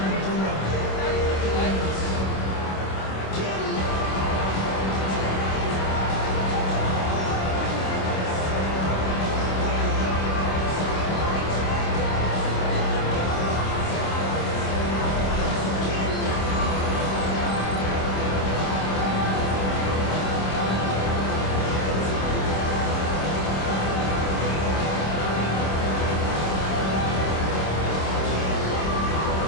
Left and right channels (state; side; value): late; right; 26 ms